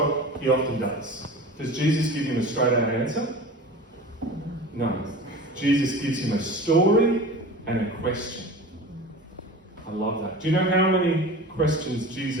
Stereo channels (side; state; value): both; normal; correlation 0.35